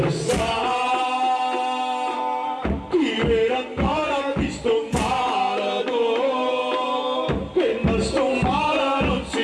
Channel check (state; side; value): identical; both; correlation 1.00